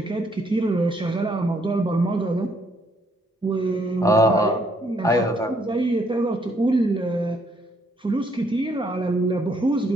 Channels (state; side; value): normal; both; correlation 0.70